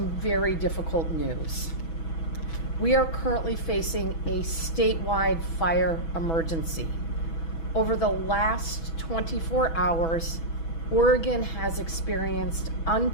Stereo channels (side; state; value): right; late; 6.1 ms